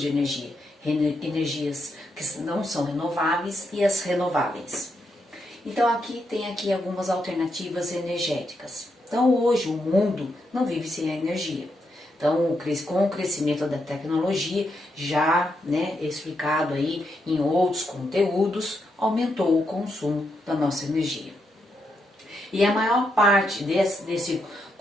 de energia, energias que não são renováveis e as renováveis. Então aqui tem algumas alternativas energéticas. Então hoje o mundo não vive sem a energia. Então com o crescimento da tecnologia, já explicado aí em outros conteúdos, aumentou o consumo da nossa energia. E a maior parte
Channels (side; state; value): both; normal; correlation 0.81